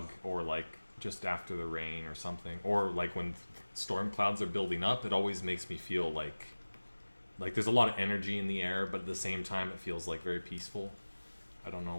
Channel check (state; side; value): inverted; both; correlation -1.00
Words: or like just after the rain or something, or like when storm clouds are building up. It always makes me feel like there's a lot of energy in the air, but at the same time it feels like very peaceful. I don't